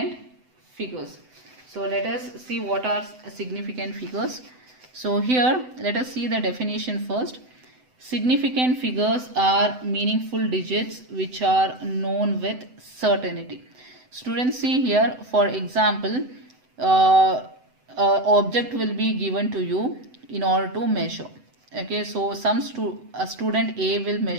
figures. So let us see what are significant figures. So here let us see the definition first. Significant figures are meaningful digits which are known with certainty. Students, see here, for example, object will be given to you in order to measure. Okay, so a student A will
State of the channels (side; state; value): left; late; 7.9 ms